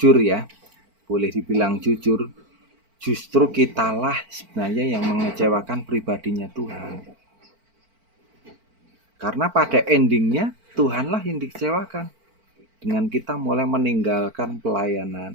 ya, boleh dibilang jujur, justru kitalah sebenarnya yang mengecewakan pribadinya Tuhan. Karena pada endingnya Tuhanlah yang dikecewakan. dengan kita mulai meninggalkan pelayanan,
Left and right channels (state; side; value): late; left; 4.5 ms